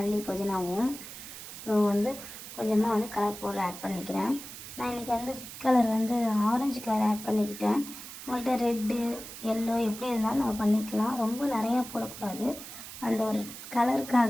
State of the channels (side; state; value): right; noise; hiss, 12 dB below the sound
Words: புதினாவும். ஸோ வந்து கொஞ்சமாக வந்து கலர் பவுடர் ஆட் பண்ணிக்கிறேன். நான் இன்றைக்கி வந்து ஃபுட் கலர் வந்து ஆரஞ்சு கலர் ஆட் பண்ணிக்கிட்டேன். உங்கள்கிட்ட ரெட்டு எல்லோ எப்படி இருந்தாலும் நம்ம பண்ணிக்கலாம். ரொம்ப நிறையா போடக்கூடாது, அந்த ஒரு